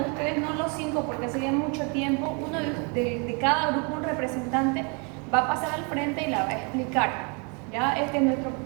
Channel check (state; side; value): quieter; left; 34.2 dB